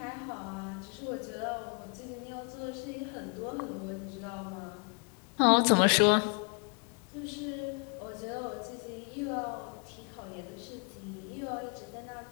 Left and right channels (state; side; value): quieter; right; 37.0 dB